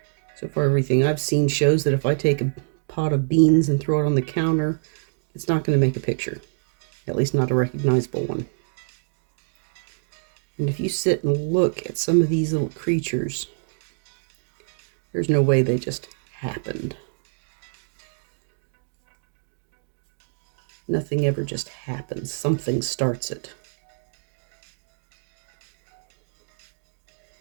So far, everything I've seen shows that if I take a pot of beans and throw it on the counter, it's not going to make a picture, at least not a recognizable one. And if you sit and look at some of these little creatures, there's no way they just happened. Nothing ever just happens. Something starts it.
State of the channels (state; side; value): silent; left; digital silence